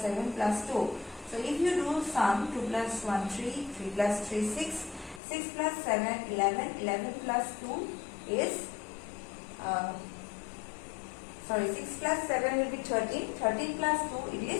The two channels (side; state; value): right; drops out; at 5.2 s